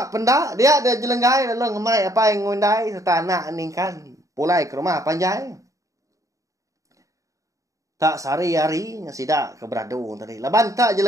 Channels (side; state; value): left; late; 0.16 ms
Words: pendak dia ada jelenggai lalu ngemai apa yang ngundai serta anak ningkan pulai ke rumah panjai. Tak sari-hari sidak ke beradu tadi. Laban tak